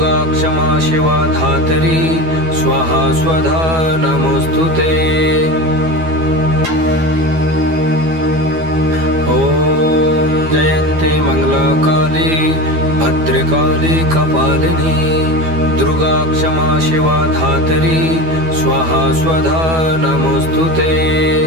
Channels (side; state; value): left; late; 12 ms